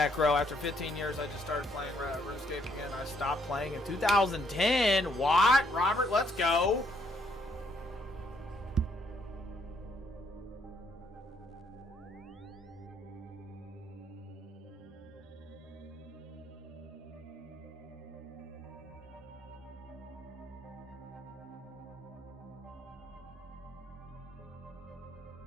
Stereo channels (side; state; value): both; normal; correlation 0.70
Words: After 15 years, I just started playing RuneScape again. I stopped playing in 2010. What? Robert, let's go.